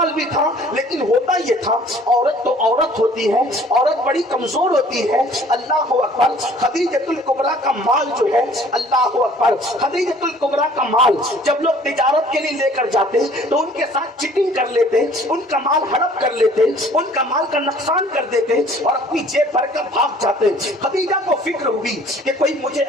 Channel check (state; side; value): normal; both; correlation 0.54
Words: بھی تھا. لیکن ہوتا یہ تھا، عورت تو عورت ہوتی ہے، عورت بڑی کمزور ہوتی ہے. اللہ اکبر. خدیجۃ الکبریٰ کا مال جو ہے، اللہ اکبر، خدیجۃ الکبریٰ کا مال جب لوگ تجارت کے لیے لے کر جاتے تو ان کے ساتھ چیٹنگ کر لیتے، ان کا مال ہڑپ کر لیتے، ان کا مال کا نقصان کر دیتے اور اپنی جیب بھر کر بھاگ جاتے. خدیجہ کو فکر ہوئی کہ کوئی مجھے